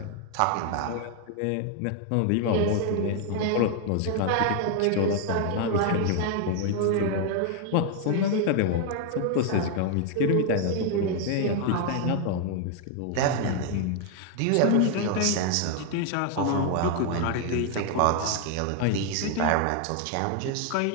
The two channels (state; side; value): different; both; correlation 0.00